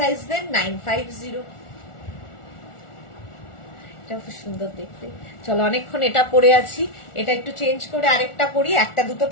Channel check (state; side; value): late; right; 1.4 ms